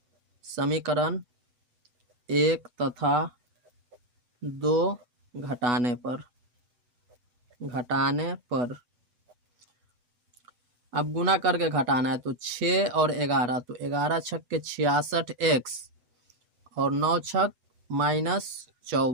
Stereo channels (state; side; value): late; left; 8.2 ms